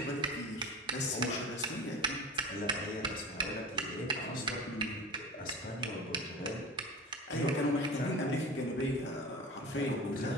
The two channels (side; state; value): both; normal; correlation 0.33